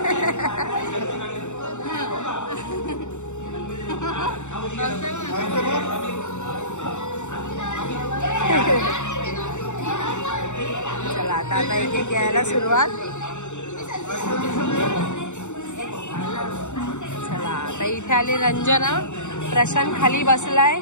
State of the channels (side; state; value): right; late; 0.84 ms